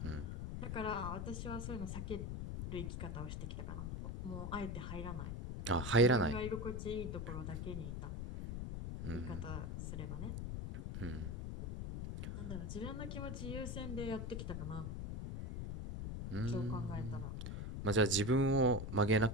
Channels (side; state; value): left; noise; rumble, 4 dB below the sound